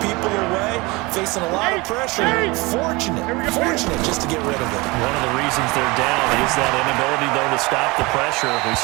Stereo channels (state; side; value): quieter; left; 24.2 dB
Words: people away, facing a lot of pressure. Fortunate just to get rid of it. One of the reasons they're down is that inability, though, to stop the pressure. We